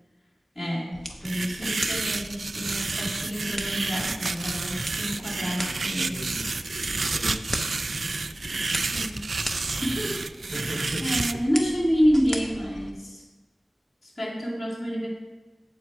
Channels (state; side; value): normal; both; correlation 0.97